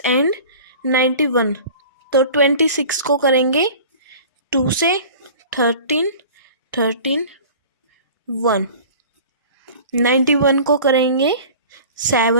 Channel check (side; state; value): both; inverted; correlation -0.42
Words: एंड 91। तो 26 को करेंगे 2 से 13 1। 91 को करेंगे